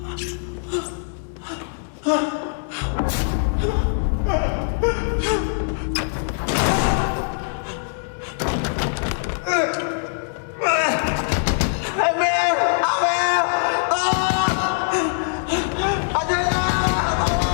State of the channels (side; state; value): right; silent; 64 dB below the other